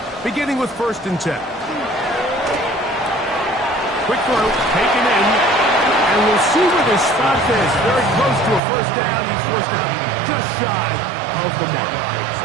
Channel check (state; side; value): drops out; left; at 8.6 s